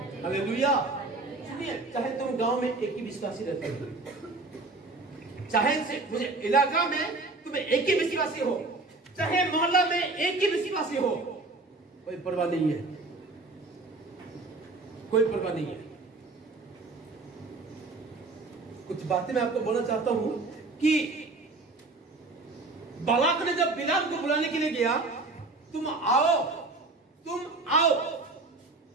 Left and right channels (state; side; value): quieter; left; 3.4 dB